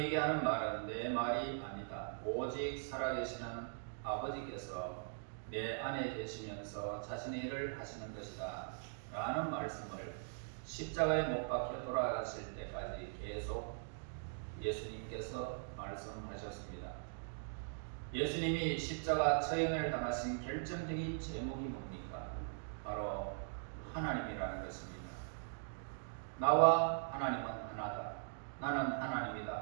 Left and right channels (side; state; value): left; silent; digital silence